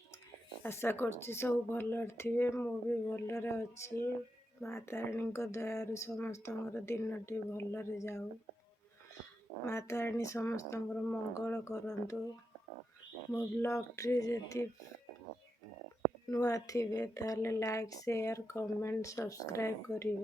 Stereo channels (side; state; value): both; normal; correlation 0.86